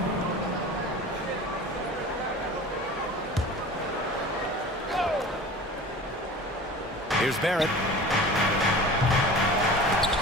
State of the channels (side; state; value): both; normal; correlation 0.38